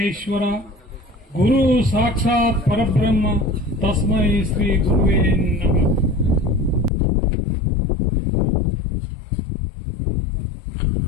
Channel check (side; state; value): right; drops out; at 6.9 s